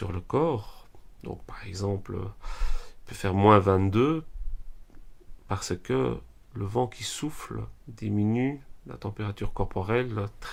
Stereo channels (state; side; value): identical; both; correlation 1.00